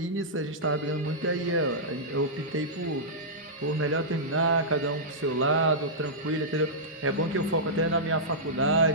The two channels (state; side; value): normal; both; correlation -0.13